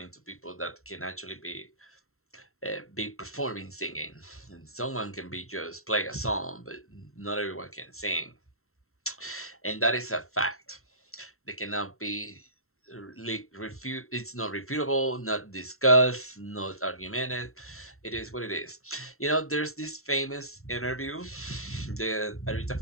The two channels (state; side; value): late; right; 0.63 ms